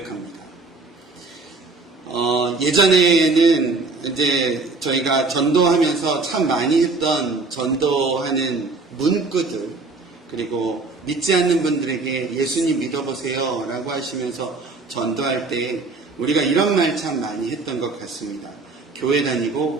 예전에는 이제 저희가 전도하면서 참 많이 했던 전도하는 문구들, 그리고 믿지 않는 분들에게 예수님 믿어보세요 라고 하시면서 전도할 때 우리가 이런 말 참 많이 했던 것 같습니다. 교회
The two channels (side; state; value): left; quieter; 3.7 dB